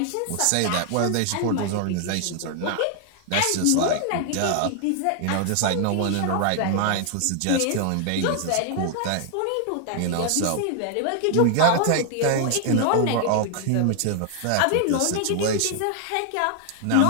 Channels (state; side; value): different; both; correlation 0.00